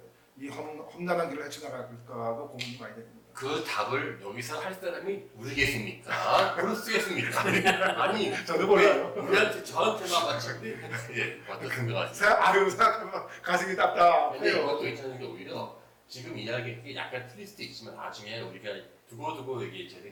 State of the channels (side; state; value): both; identical; correlation 1.00